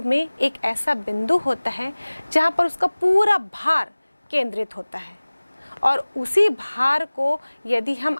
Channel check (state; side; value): inverted; both; correlation -1.00